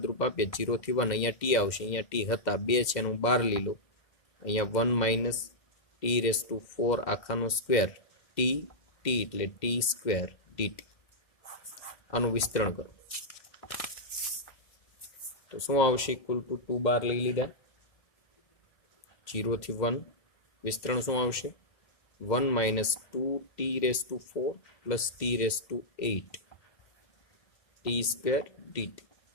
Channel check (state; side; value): late; right; 2.0 ms